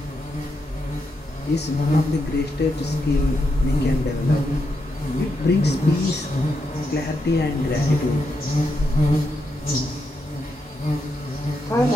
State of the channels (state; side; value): normal; both; correlation 0.83